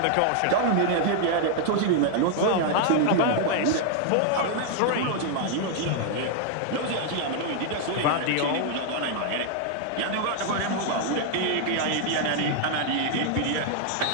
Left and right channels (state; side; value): different; both; correlation 0.00